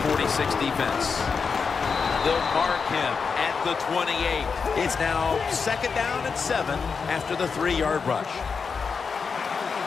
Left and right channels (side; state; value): right; quieter; 5.5 dB